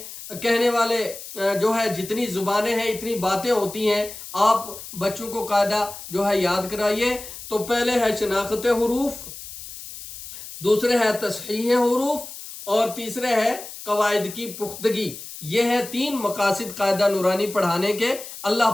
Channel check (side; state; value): left; noise; hiss, 12 dB below the sound